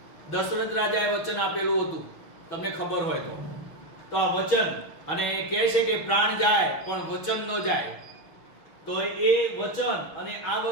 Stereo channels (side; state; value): right; late; 6.5 ms